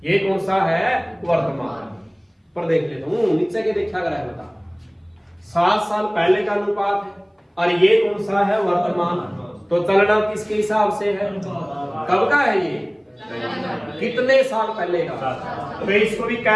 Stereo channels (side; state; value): both; identical; correlation 1.00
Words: ये कौन सा है? वर्तमान। पर देख लेता हूं नीचे के देखा कर है, बता 7 साल पहले का अनुपात है और ये कौन सा है? वर्तमान। तो चलना किसके हिसाब से है? कब का है ये? कितने साल पहले का? तो इसको भी